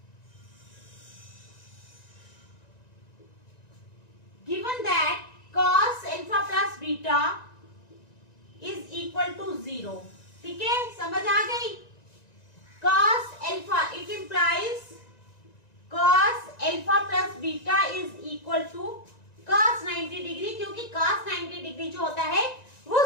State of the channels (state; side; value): late; right; 1.9 ms